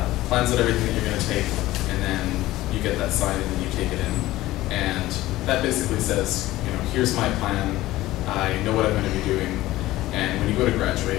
plans out everything that you're going to take, and then you get that signed and then you take it in, and that basically says, here's my plan, I know what I'm going to be doing, and when you go to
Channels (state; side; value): quieter; right; 16.6 dB